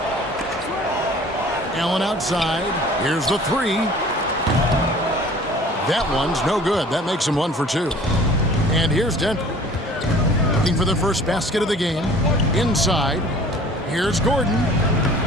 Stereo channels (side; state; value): both; normal; correlation 0.48